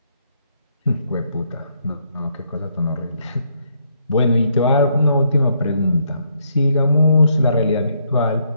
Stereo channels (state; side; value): inverted; both; correlation -0.73